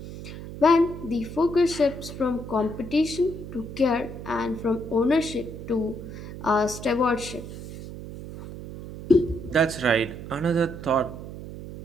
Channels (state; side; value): noise; right; hum, 11 dB below the sound